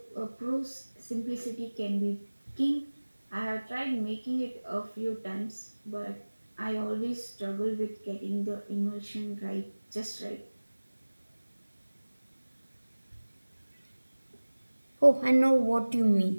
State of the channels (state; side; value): inverted; both; correlation -1.00